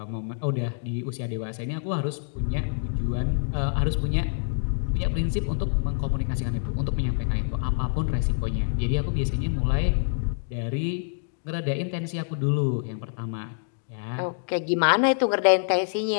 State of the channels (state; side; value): silent; right; digital silence